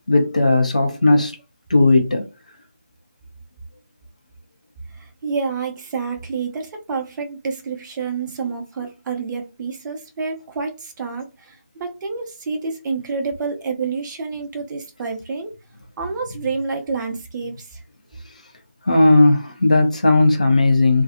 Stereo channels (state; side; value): inverted; both; correlation -0.88